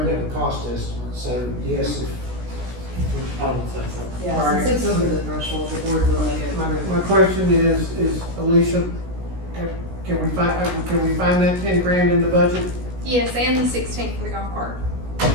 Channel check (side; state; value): left; late; 16 ms